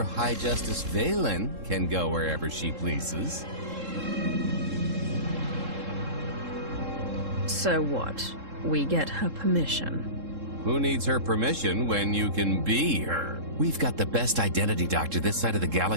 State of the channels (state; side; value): late; left; 3.7 ms